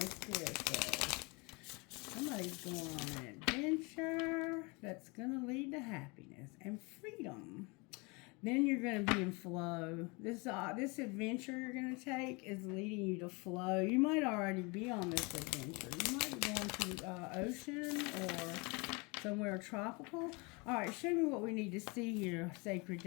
Spirit says. Somebody's going on an adventure that's going to lead to happiness and freedom. Then you're going to be in flow. This adventure you're going to take is leading you to flow. You might already be on this adventure. You might be going to ocean or somewhere tropical. All right, show me what we need to see here, Sacred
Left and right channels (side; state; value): right; quieter; 28.6 dB